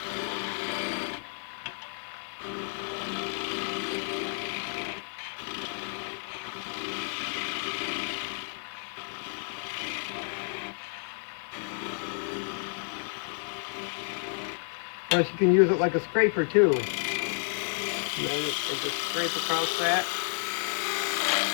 Of course, you can use it like a scraper too. And then just scrape across that.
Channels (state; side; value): silent; right; digital silence